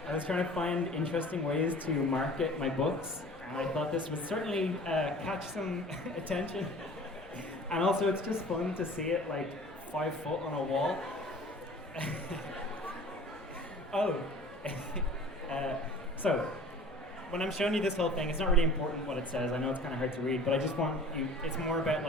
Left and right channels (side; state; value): both; normal; correlation 0.45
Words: was trying to find interesting ways to market my books, and I thought this would certainly catch some attention. And also it's just fun to see it like 5 foot on a wall. So, when I'm showing you this whole thing, it's not really important what it says. I know it's kind of hard to read, but I just want you, it's more about